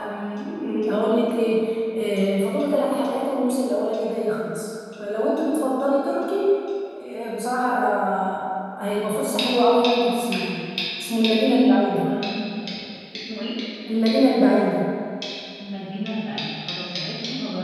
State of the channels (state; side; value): identical; both; correlation 1.00